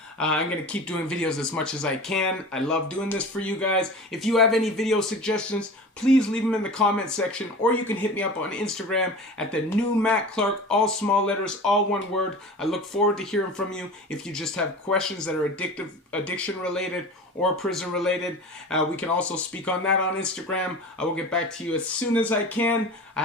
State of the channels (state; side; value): normal; both; correlation 0.35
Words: I'm going to keep doing videos as much as I can. I love doing this for you guys. If you have any video suggestions, please leave them in the comment section, or you can hit me up on Instagram at the new Matt Clark, all small letters, all one word. I look forward to hearing from you. If you just have questions that are addiction related or prison related, we can also speak on that on Instagram. I will get back to you as soon as I can. I